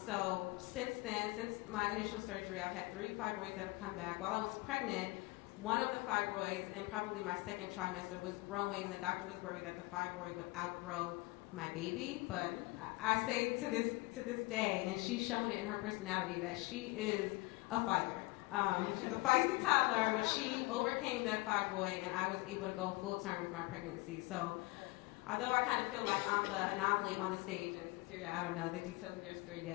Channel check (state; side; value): quieter; right; 23.6 dB